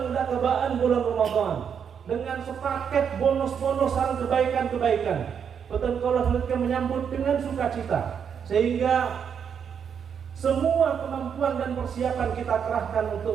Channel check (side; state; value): left; quieter; 7.4 dB